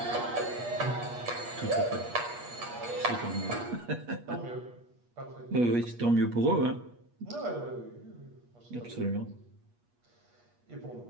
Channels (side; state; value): left; late; 8.4 ms